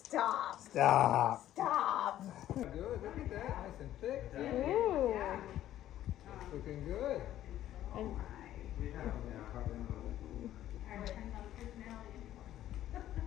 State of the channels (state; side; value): quieter; right; 12.6 dB